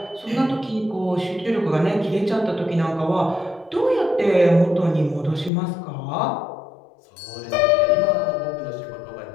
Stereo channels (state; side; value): drops out; right; at 5.5 s